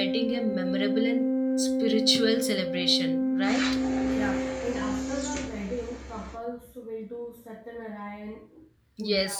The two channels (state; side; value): identical; both; correlation 1.00